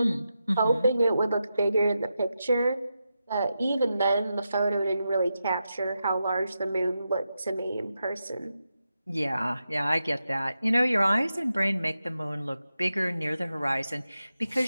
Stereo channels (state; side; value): inverted; both; correlation -0.88